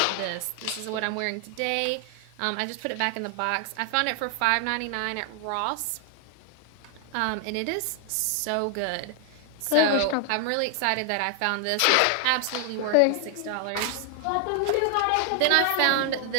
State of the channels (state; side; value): different; both; correlation 0.00